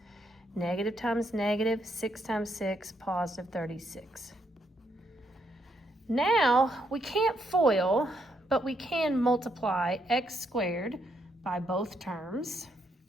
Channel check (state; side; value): normal; both; correlation 0.76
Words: Negative times negative, 6 times 6, positive 36. Now, we can't FOIL, but we can multiply x squared by both terms.